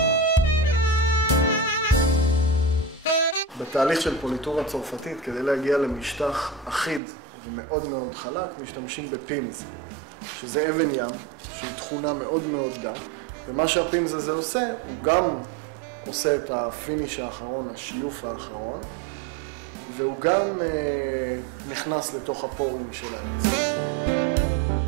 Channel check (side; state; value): left; drops out; at 7.0 s